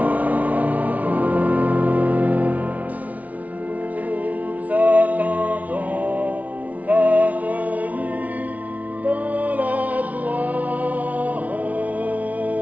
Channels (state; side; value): late; left; 0.071 ms